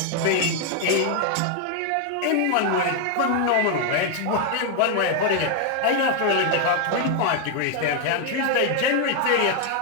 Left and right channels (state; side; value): different; both; correlation 0.00